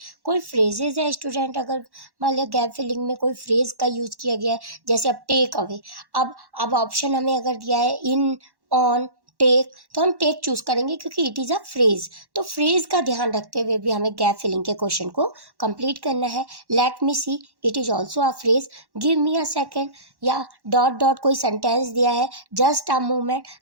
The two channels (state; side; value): late; left; 1.1 ms